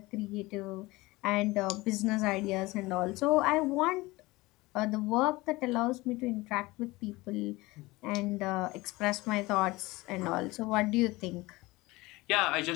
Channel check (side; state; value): right; quieter; 21.1 dB